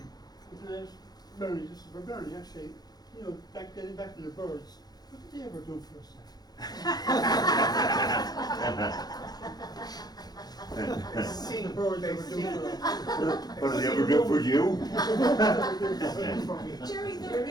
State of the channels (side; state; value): right; late; 0.19 ms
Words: Bernie, this is for Bernie actually, you know, getting back to the birds, what did they ever do for us? Seeing birds ever do for us. What did they ever do for you? Jerry, they're